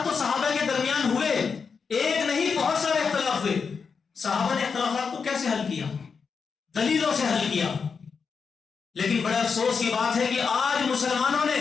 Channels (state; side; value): quieter; right; 5.6 dB